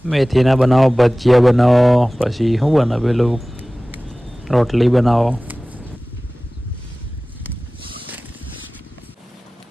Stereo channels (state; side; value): normal; both; correlation 0.98